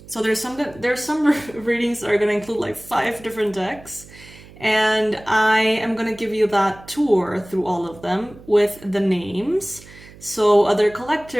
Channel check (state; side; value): noise; right; hum, 21 dB below the sound